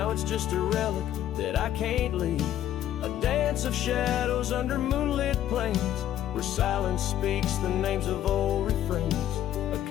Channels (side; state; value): right; quieter; 11.8 dB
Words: it's just a relic that I can't leave. A dance of shadows under moonlit plains, where silence speaks the names of old refrains. A